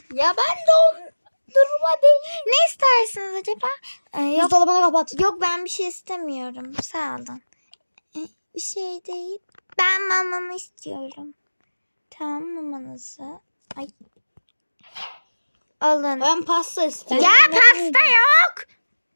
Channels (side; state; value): both; inverted; correlation -1.00